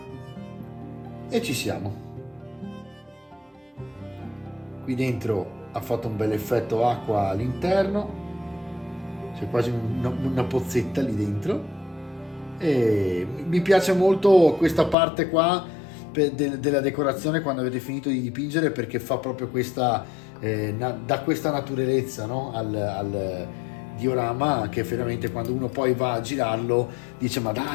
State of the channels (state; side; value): drops out; right; at 15.0 s